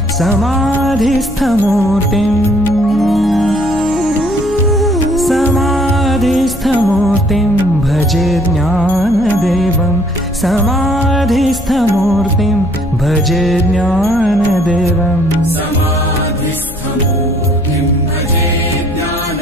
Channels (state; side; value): noise; left; hum, 15 dB below the sound